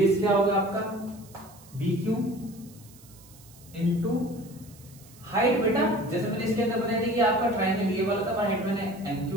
क्या होगा आपका बी क्यू इंटू हाइट। बेटा जैसे मैंने इसके अंदर बताया था कि आपका ट्रायंगल ये वाला था, हाइट मैंने एम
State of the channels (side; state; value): right; noise; hiss, 23 dB below the sound